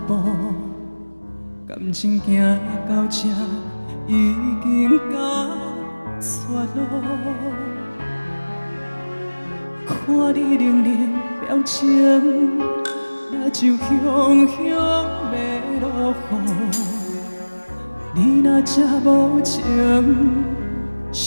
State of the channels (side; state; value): both; inverted; correlation -1.00